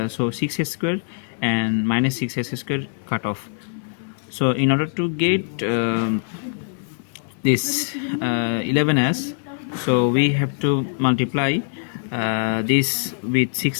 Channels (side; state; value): right; silent; digital silence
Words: so 6s square and minus 6s square cut off. So in order to get this 11s, so we have to multiply this with